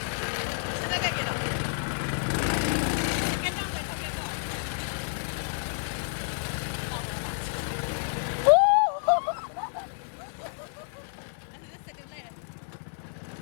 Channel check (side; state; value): right; silent; digital silence